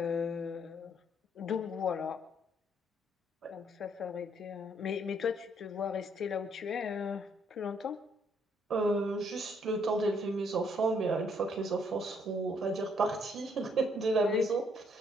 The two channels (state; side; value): normal; both; correlation 0.68